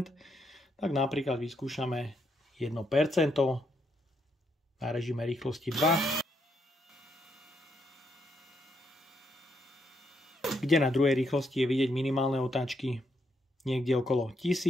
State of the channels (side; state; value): both; normal; correlation 0.77